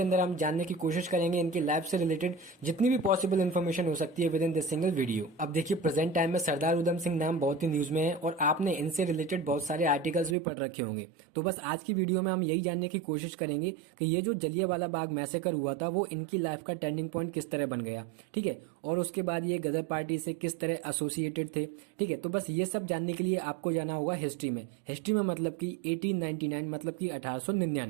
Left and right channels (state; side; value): drops out; left; at 10.4 s